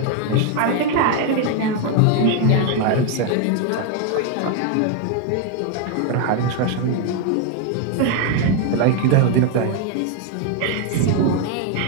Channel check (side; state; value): both; different; correlation 0.01